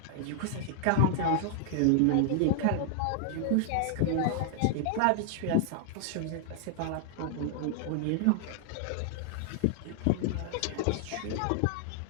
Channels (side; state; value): both; different; correlation -0.01